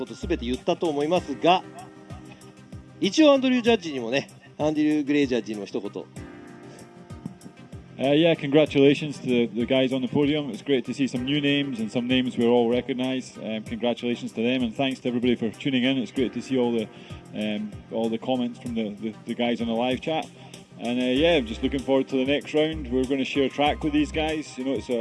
とすべて言ったと思いますが、一応アンドリュージャッジにもね、アンドリュー・グレイジャッジにも一言。Yeah, congratulations to the guys on the podium. It's great to see some new names and some names we all recognise. Congratulations to them, and thanks to everybody for tuning in. It's great to see all the comments from the guys on the live chat. And yeah, I'm just looking forward to the next round. We're going to share track with these guys. You know, it's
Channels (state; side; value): identical; both; correlation 1.00